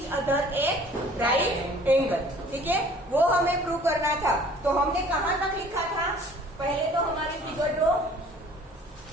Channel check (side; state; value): both; normal; correlation 0.52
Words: other at right angle, ठीक है, वो हमें प्रूव करना था। तो हमने कहां तक लिखा था? पहले तो हमारी फिगर ड्रॉ,